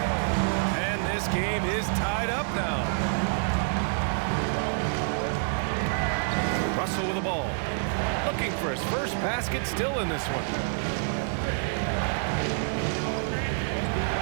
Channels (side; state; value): left; silent; digital silence